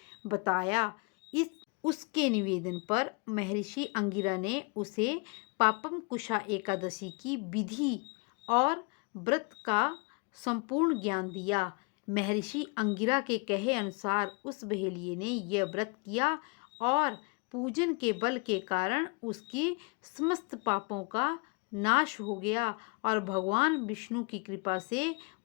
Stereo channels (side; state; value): right; quieter; 31.7 dB